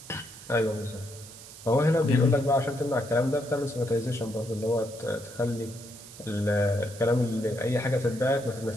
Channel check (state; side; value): noise; right; hiss, 17 dB below the sound